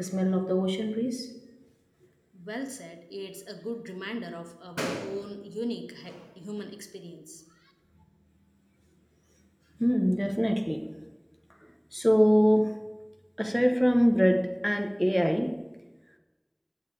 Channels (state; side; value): identical; both; correlation 1.00